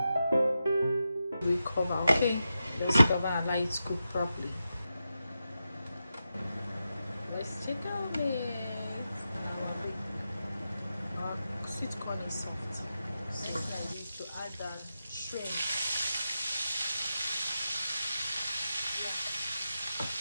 We cover. Okay, let's cover and let it cook properly. Let's check on it. Our sweet corn is soft, so I need to add the shrimp.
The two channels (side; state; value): both; inverted; correlation -0.89